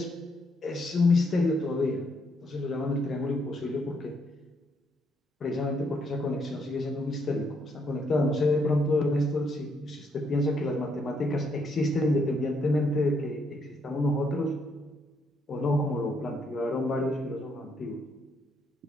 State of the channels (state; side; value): normal; both; correlation 0.74